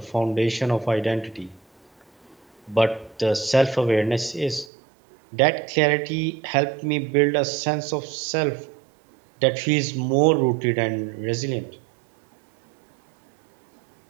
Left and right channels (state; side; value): drops out; left; at 4.7 s